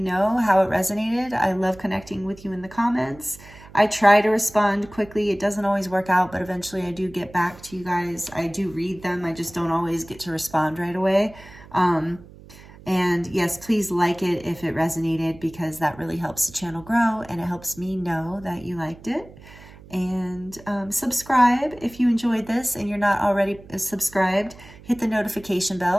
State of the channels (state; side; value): noise; right; hum, 20 dB below the sound